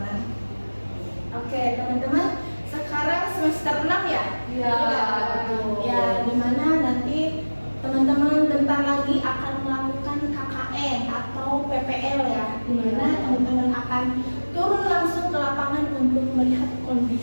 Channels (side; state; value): both; inverted; correlation -1.00